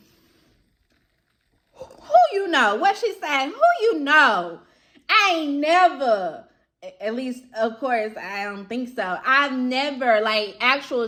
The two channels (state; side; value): identical; both; correlation 1.00